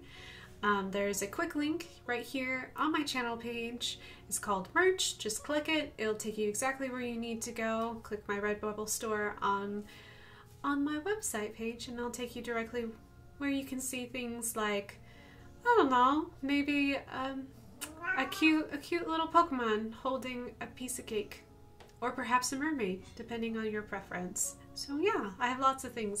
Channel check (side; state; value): both; identical; correlation 1.00